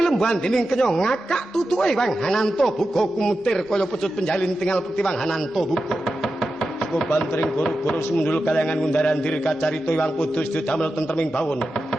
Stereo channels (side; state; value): both; normal; correlation 0.91